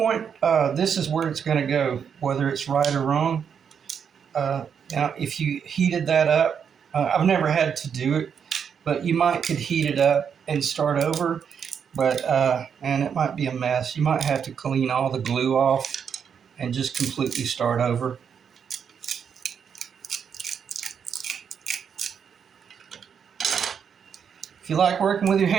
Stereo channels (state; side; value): quieter; left; 7.3 dB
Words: this is where it's going to go, whether it's right or wrong. Now, if you heated that up, I've never had to do it, but you could heat it up and start over. But and it might be a mess. You might have to clean all the glue off and just completely start over. If you like working with your